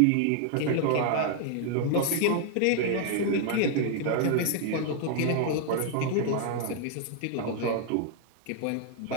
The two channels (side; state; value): both; different; correlation 0.00